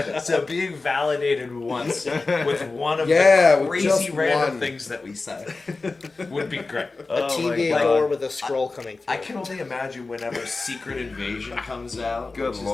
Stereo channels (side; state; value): right; quieter; 3.7 dB